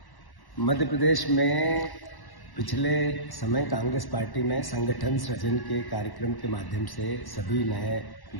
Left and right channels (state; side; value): late; right; 1.1 ms